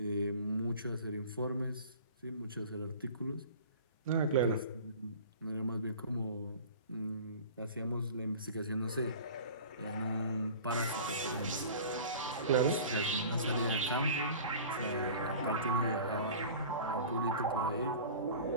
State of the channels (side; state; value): both; inverted; correlation -0.40